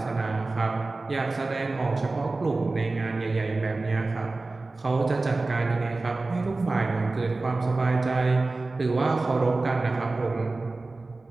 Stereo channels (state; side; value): quieter; left; 3.3 dB